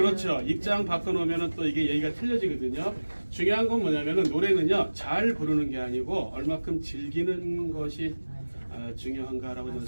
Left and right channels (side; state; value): both; inverted; correlation -1.00